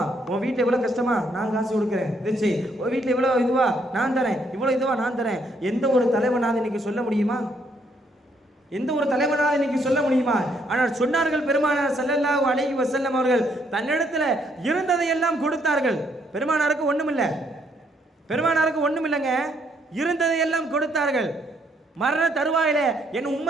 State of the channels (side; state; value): both; normal; correlation 0.71